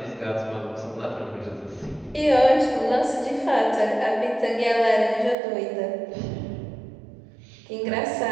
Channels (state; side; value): drops out; left; at 5.4 s